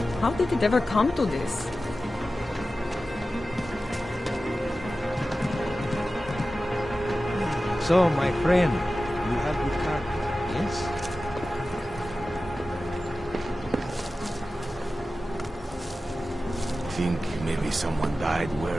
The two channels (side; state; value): both; normal; correlation 0.94